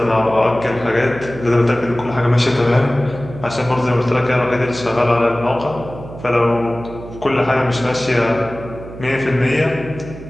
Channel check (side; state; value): right; noise; hum, 14 dB below the sound